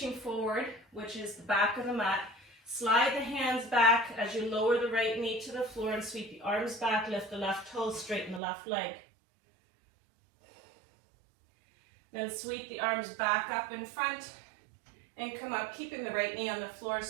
forward, which is the back of the mat. Slide the hands back as you lower the right knee to the floor and sweep the arms back, lift the left toe, straighten the left leg. Then sweep the arms back up in front and come up, keeping the right knee on the floor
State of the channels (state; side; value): drops out; left; at 8.4 s